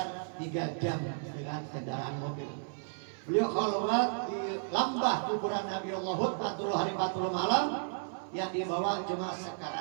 3 jam dengan kendaraan mobil. Beliau khalwat di lambah kuburan Nabi Allah Hud 40 hari 40 malam, yang dibawa cuma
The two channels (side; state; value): left; silent; 56 dB below the other